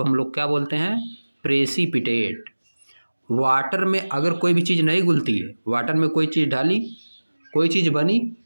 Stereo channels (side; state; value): both; inverted; correlation -1.00